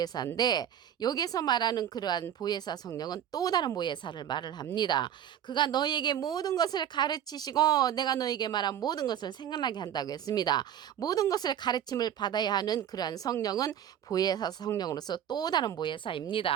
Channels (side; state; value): left; quieter; 10.1 dB